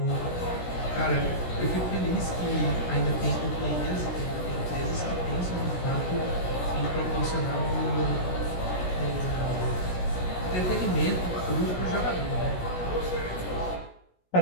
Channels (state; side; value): late; right; 16 ms